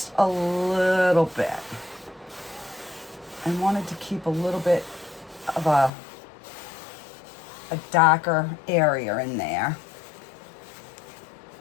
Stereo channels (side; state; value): right; drops out; at 5.9 s